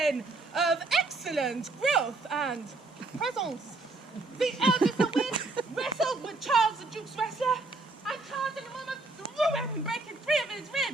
of excellent growth and presence. The eldest of which wrestled with Charles the Duke's wrestler, and Charles in a moment threw him, breaking 3 of his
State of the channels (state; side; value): quieter; left; 3.2 dB